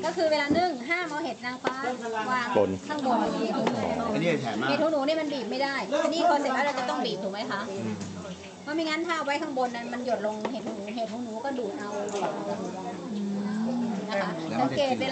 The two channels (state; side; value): identical; both; correlation 1.00